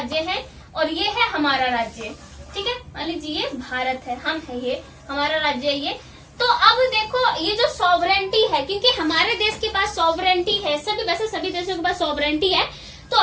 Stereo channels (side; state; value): both; identical; correlation 1.00